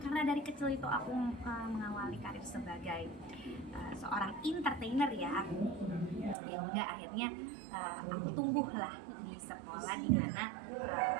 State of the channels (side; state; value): left; drops out; at 6.4 s